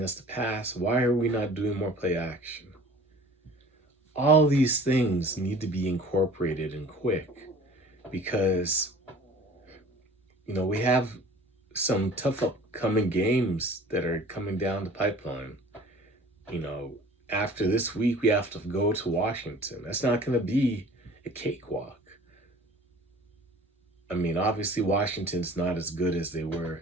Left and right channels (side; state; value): both; normal; correlation 0.47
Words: us to pass. Why are we not doing more play action? All these things need to be incorporated and quick, because we have some tough upcoming games that are coming down the pipeline. You know, After this week, we have to go to Washington. That's not going to be a cakewalk. I mean, obviously, Washington's not as good as they were